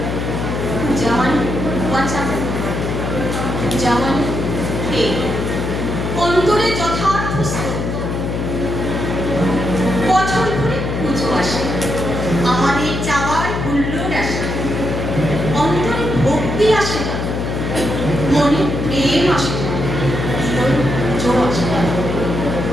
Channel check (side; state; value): left; noise; hum, 3 dB below the sound